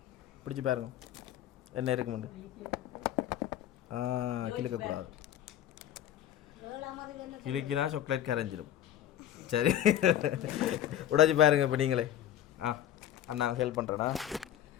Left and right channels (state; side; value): quieter; right; 11.2 dB